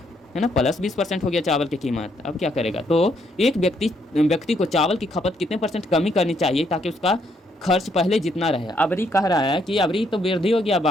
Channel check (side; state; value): both; normal; correlation 0.72